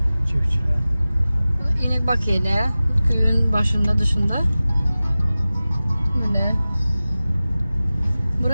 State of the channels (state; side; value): inverted; both; correlation -0.97